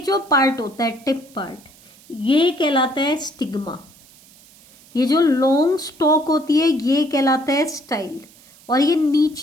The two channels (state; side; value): noise; right; hiss, 26 dB below the sound